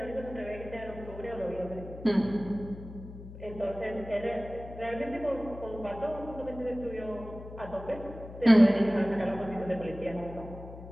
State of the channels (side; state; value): left; noise; hum, 13 dB below the sound